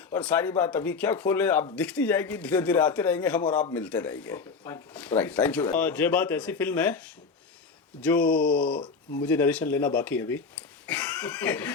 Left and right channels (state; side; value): quieter; right; 4.9 dB